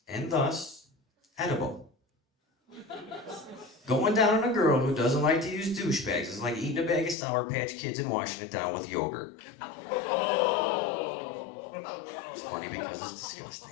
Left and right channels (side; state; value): right; drops out; at 7.2 s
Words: And thus, edible. Going down on a girl who doesn't like to use douchebags is like eating a bag of Sour Patch Kids and washing it down with yogurt. It's funny because it's